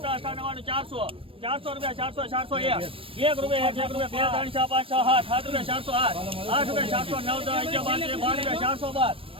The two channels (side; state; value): left; late; 0.26 ms